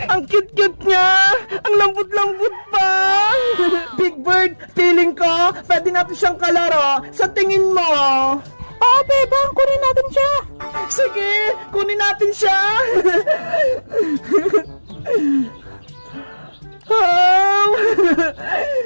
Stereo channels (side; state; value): both; inverted; correlation -1.00